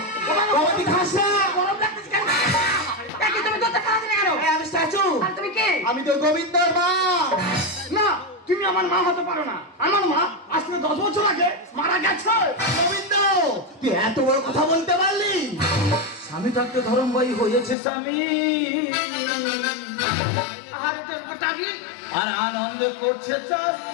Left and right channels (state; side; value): drops out; right; at 17.8 s